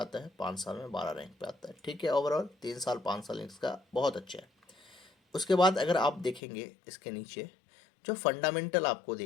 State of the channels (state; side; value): drops out; right; at 6.4 s